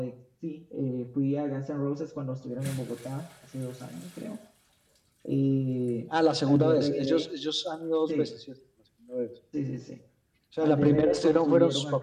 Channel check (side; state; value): both; identical; correlation 1.00